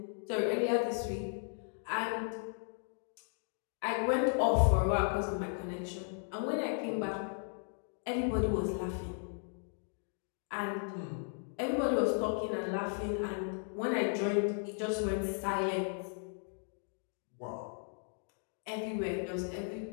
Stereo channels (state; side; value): silent; right; 54 dB below the other